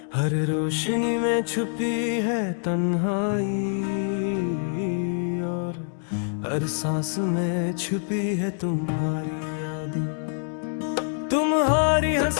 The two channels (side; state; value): right; silent; digital silence